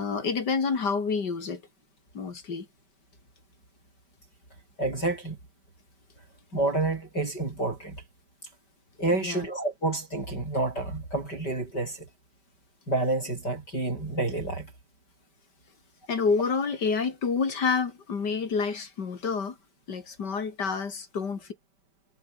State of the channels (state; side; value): late; right; 5.1 ms